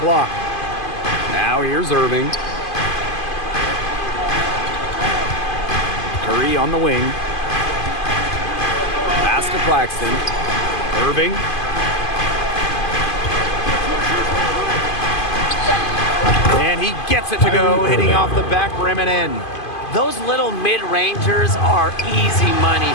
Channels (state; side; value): late; right; 2.5 ms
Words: block. Now here's Irving. Curry on the wing. Pass to Claxton. Irving. And he gets it to go, hitting off the back rim and in. Those little mid-rangers are easy money